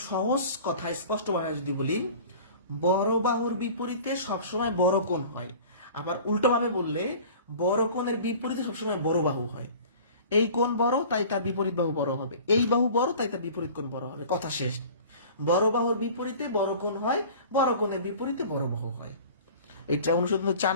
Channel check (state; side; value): inverted; both; correlation -0.43